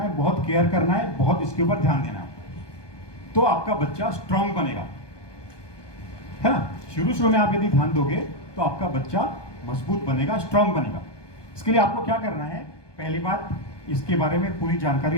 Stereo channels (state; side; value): late; right; 1.2 ms